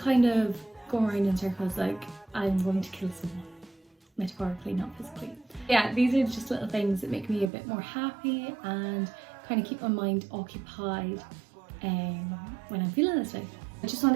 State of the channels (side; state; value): left; drops out; at 7.5 s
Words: of going around in circles like, I'm going to kill someone. Metaphorically, not physically. Yeah, these are just little things that make me a bit more happy and kind of keep my mind occupied when I'm feeling this way. I just